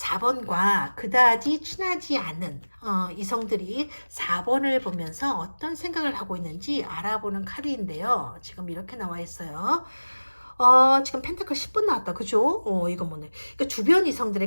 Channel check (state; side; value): inverted; both; correlation -1.00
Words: 그다지 친하지 않은 이성들이 4번을 보면서 어떤 생각을 하고 있는지 알아보는 카드인데요. 지금 이렇게 나와 있어요. 지금 펜타클 10번 나왔다. 그죠? 이거 뭐네. 그러니까 주변